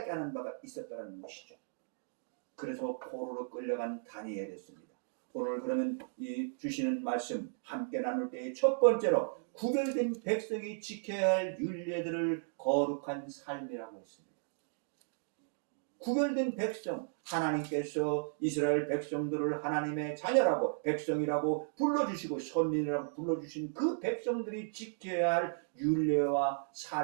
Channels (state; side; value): silent; left; digital silence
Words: 하는 바가 있었다는 것이죠. 그래서 포로로 끌려간 다니엘이었습니다. 오늘 그러면 이 주시는 말씀 함께 나눌 때의 첫 번째로 구별된 백성이 지켜야 할 율례들을 거룩한 삶이라고 했습니다. 구별된 백성, 하나님께서 이스라엘 백성들을 하나님의 자녀라고 백성이라고 불러주시고 선민이라고 불러주신 그 백성들이 지켜야 할 율례와